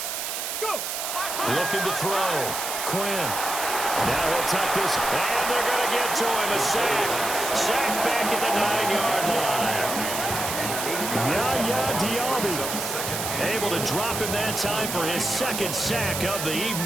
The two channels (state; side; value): noise; right; hiss, 4 dB below the sound